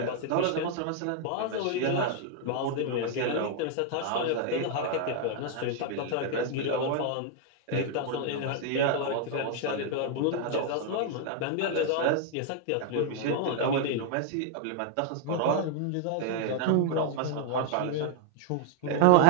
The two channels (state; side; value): different; both; correlation 0.00